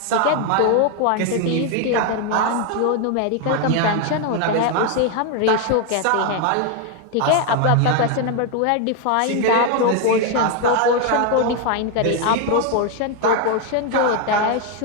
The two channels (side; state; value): both; different; correlation 0.01